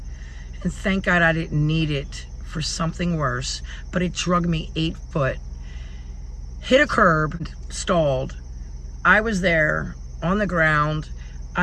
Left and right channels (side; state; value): both; identical; correlation 1.00